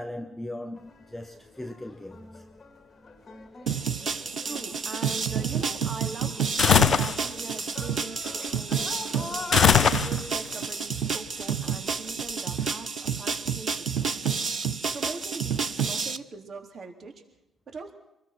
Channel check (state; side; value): normal; both; correlation 0.55